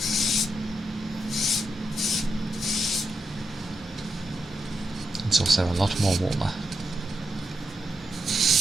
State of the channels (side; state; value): both; normal; correlation 0.85